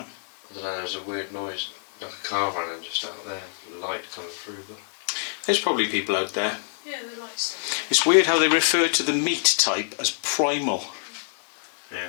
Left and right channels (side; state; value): right; silent; digital silence